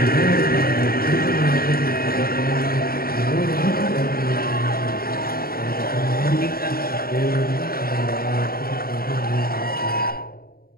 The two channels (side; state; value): right; late; 0.43 ms